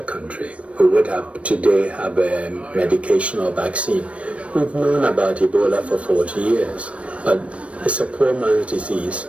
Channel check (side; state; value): left; late; 0.062 ms